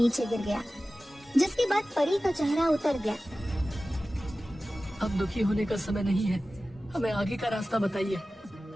गिर गया, जिसके बाद परी का चेहरा उतर गया। अब दुखी होने का समय नहीं है, हमें आगे का रास्ता बताइए।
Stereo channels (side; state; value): both; normal; correlation 0.96